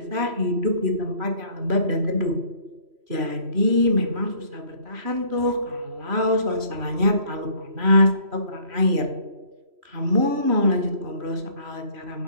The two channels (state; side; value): late; left; 3.1 ms